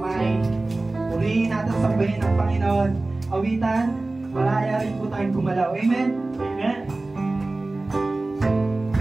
Purihin natin, sambahin ang Panginoon. Awitan, malaya rin po tayong gumalaw. Amen? Amen.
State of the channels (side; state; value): left; quieter; 3.1 dB